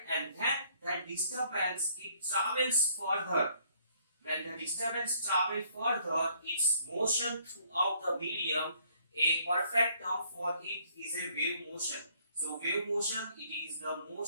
and then that disturbance, it travels further. When the disturbance travels further, its motion throughout the medium, a perfect term for it is a wave motion. So wave motion, it is the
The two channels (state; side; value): inverted; both; correlation -0.65